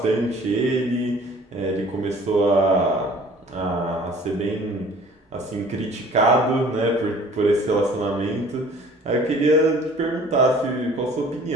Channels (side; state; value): both; normal; correlation 0.51